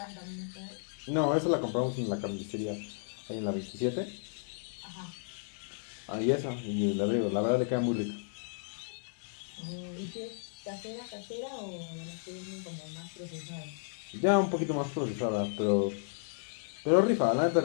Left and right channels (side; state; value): right; silent; digital silence